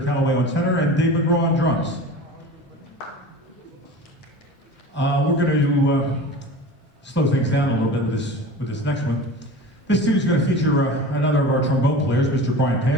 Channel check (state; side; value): normal; both; correlation 0.36